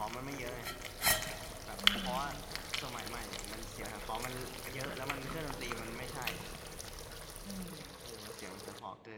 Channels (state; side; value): identical; both; correlation 1.00